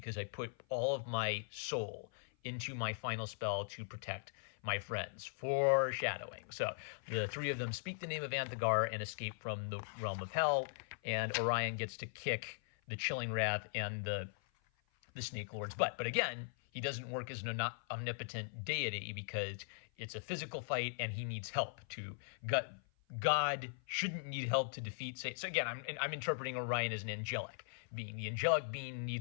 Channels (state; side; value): silent; right; 51 dB below the other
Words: I put all of my soul into my final spell to protect my friends. Foreshadowing. So the three of them speak the name of Anthegar and escape from the realm of hell, and Orion gets to kick the Chilling Wrath and the Snake Lord's butt. But again, he doesn't work as an omnipotent deity because it's a physical fight and he needs help to God shouldn't need help to defeat Satan. So again, I'm interpreting Orion as an angelic being. The angelic being